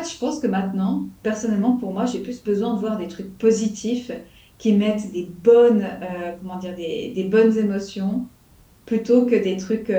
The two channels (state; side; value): identical; both; correlation 1.00